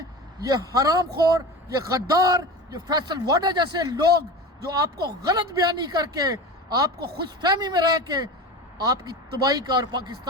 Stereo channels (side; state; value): both; normal; correlation 0.30